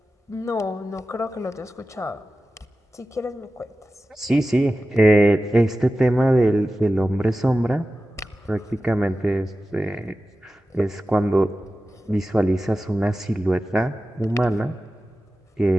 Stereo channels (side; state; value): both; normal; correlation 0.94